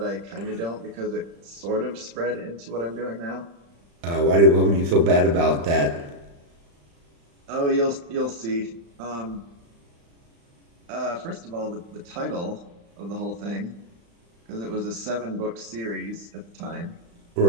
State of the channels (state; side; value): late; left; 35 ms